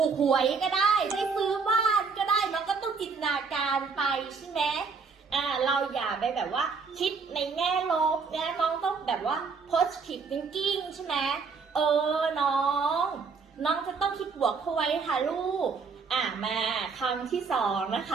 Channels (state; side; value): quieter; left; 5.0 dB